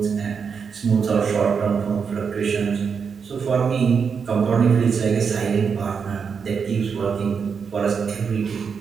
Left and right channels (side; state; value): left; quieter; 6.1 dB